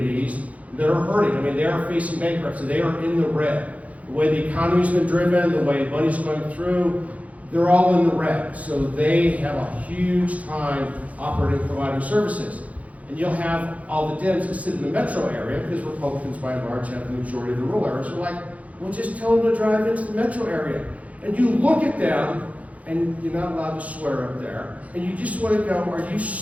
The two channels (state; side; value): late; left; 0.068 ms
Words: that are hurting. I mean, they are facing bankruptcy. They are in the red. The way the economy's been driven, the way money's going through, they're all in the red. So they have a huge time operating, providing services. And you'll have all the Dems that sit in the metro area, because Republicans by and large have the majority of the rural areas. They're like, well, just tell them to drive into the metro area. And you look at them, and you're not allowed to swear up there, and you just want to go, are you